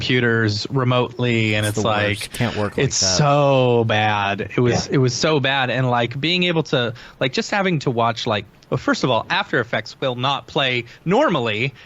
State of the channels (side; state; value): both; identical; correlation 1.00